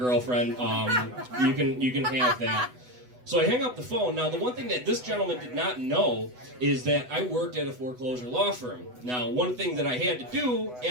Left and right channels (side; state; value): left; late; 8.1 ms